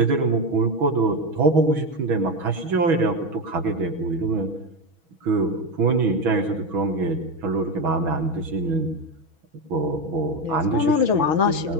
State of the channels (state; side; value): late; left; 6.2 ms